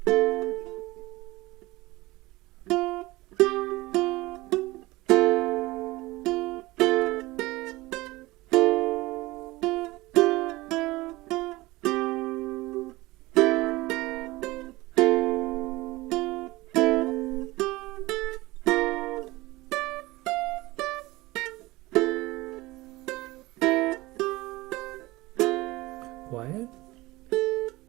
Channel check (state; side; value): quieter; left; 20.2 dB